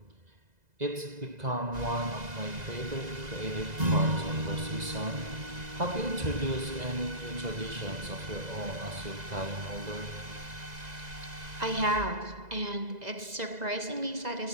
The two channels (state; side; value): late; left; 2.0 ms